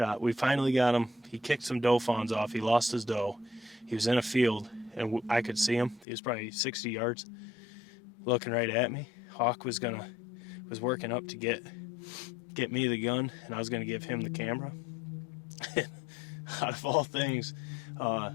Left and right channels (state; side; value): drops out; right; at 6.1 s